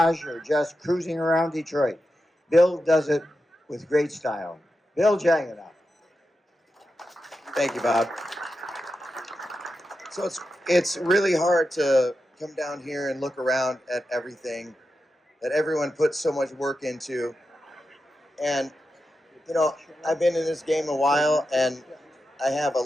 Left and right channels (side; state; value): both; normal; correlation 0.90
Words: or just cruising around Detroit. Bill does it with great style. Bill Jagano. Thank you, Bob. So it's really hard to come down here and look around at everything that everyone puts so much work into. And, you know, I've been in this game a while, and I have a